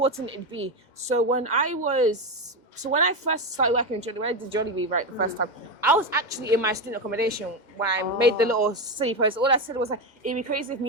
it'd be. So when I first started working in Jollibee, when I did Jollibee the first time, I was actually in my student accommodation when I made the little city post. All I said was like, it'd be crazy if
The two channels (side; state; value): right; late; 2.1 ms